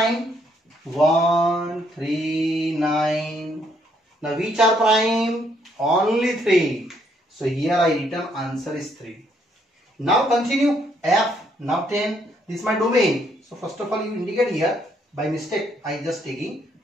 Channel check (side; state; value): both; normal; correlation 0.70